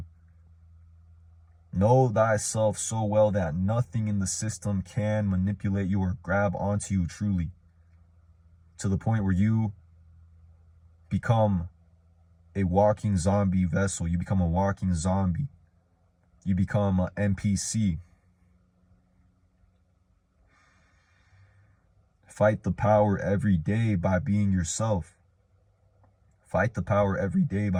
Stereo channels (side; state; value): both; identical; correlation 1.00